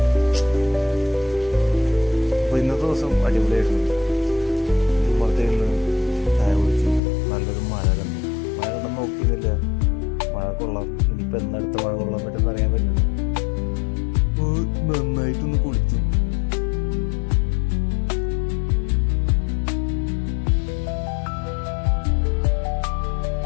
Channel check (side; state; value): right; drops out; at 7.0 s